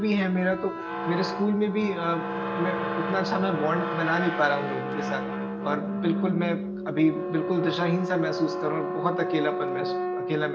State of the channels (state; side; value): identical; both; correlation 1.00